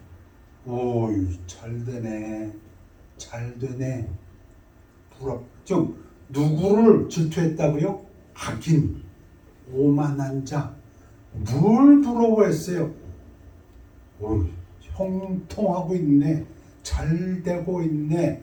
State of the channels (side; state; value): both; identical; correlation 1.00